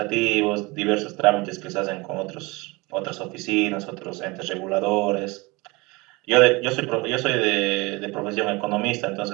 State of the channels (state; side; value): quieter; left; 24.5 dB